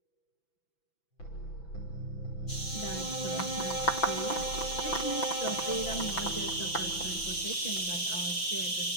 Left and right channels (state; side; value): late; right; 6.0 ms